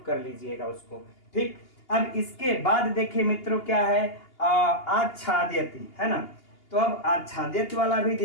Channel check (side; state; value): right; late; 2.8 ms